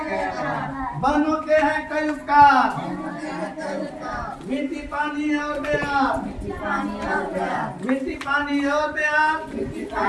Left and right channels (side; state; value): both; identical; correlation 1.00